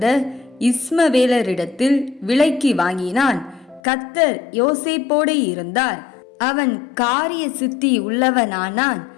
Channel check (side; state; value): right; drops out; at 3.8 s